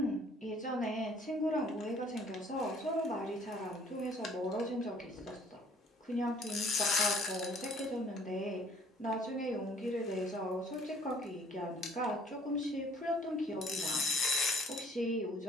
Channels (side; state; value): both; normal; correlation 0.57